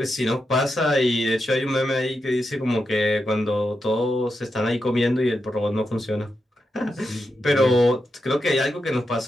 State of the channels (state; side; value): normal; both; correlation 0.86